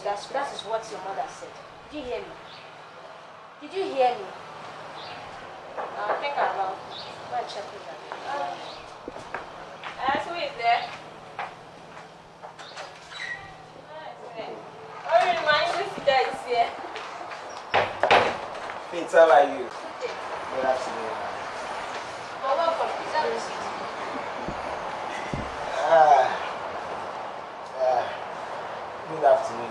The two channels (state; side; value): identical; both; correlation 1.00